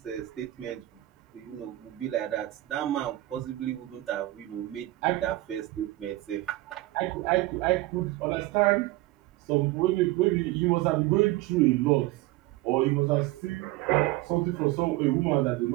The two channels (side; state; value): left; quieter; 17.8 dB